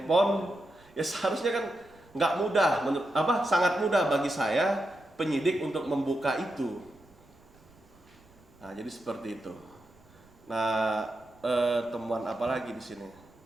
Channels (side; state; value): right; noise; rumble, 28 dB below the sound